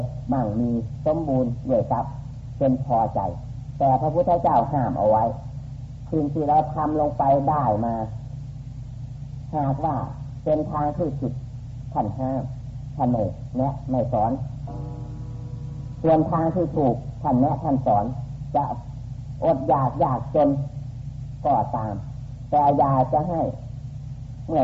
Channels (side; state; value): both; identical; correlation 1.00